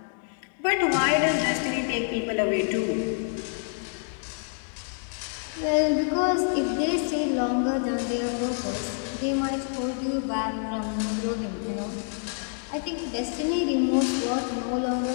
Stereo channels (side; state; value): right; silent; 60 dB below the other